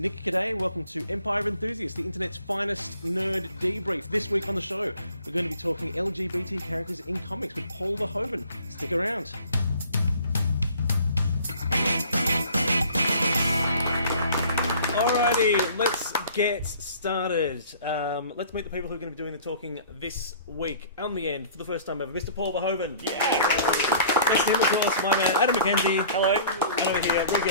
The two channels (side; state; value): both; inverted; correlation -0.51